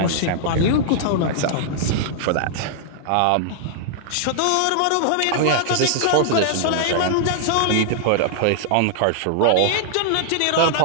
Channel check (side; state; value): both; different; correlation -0.01